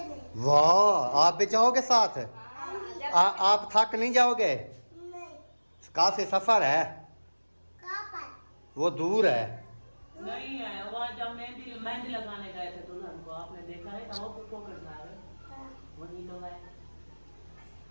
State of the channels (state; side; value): inverted; both; correlation -1.00